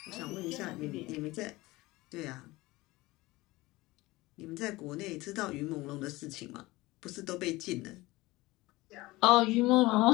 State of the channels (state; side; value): quieter; right; 20.2 dB